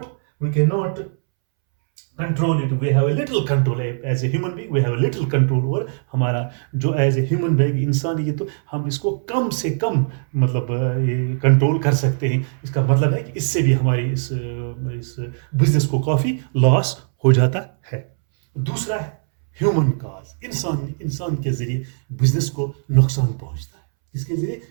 control it. We have a little control as a human being. We have a little control over हमारा जो as a human being इंसान, ये तो हम इसको कम से कम मतलब कंट्रोल कर सकते हैं. इसका मतलब है कि इससे भी हमारी इस बिजनेस को काफी लॉस हो जाता है. दूसरा है ह्यूमन कॉज. इंसान के जरिए बिजनेस को नुकसान पहुंचता है. इसके जरिए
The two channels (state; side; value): silent; left; 65 dB below the other